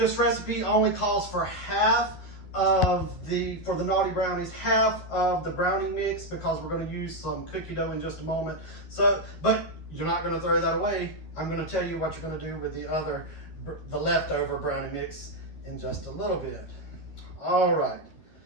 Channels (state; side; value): late; right; 12 ms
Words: recipe only calls for half of for the naughty brownies, half of the brownie mix, because we're going to use some cookie dough in just a moment. So, but you're not going to throw that away. I'm going to tell you what you're going to do with the leftover brownie mix in just a little bit. All right.